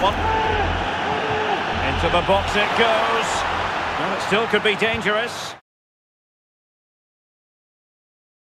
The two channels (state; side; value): identical; both; correlation 1.00